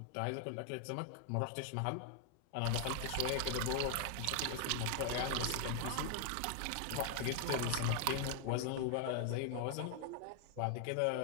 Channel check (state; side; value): different; both; correlation 0.00